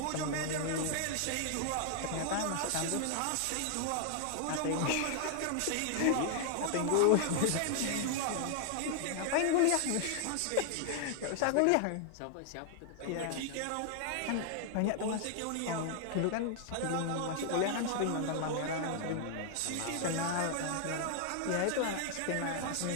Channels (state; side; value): different; both; correlation 0.00